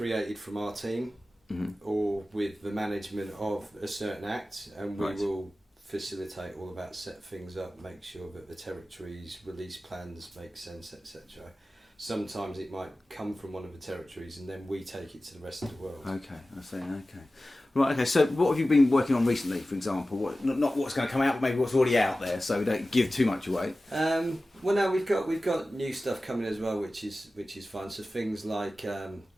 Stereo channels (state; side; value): normal; both; correlation 0.95